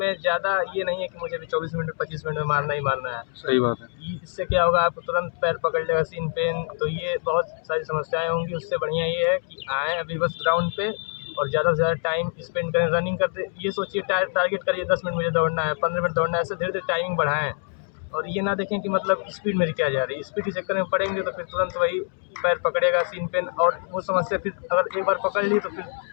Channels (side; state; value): right; silent; 62 dB below the other